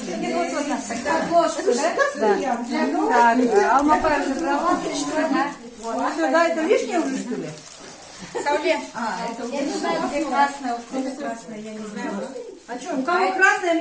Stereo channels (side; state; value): both; identical; correlation 1.00